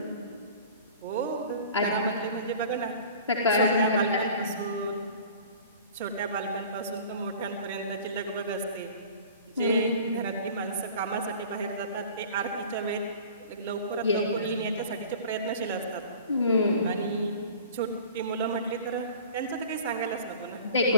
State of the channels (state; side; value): inverted; both; correlation -0.43